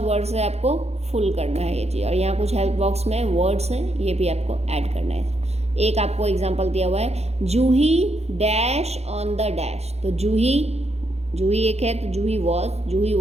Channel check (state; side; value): late; left; 0.31 ms